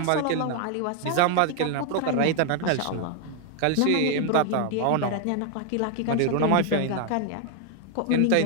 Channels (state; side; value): different; both; correlation 0.00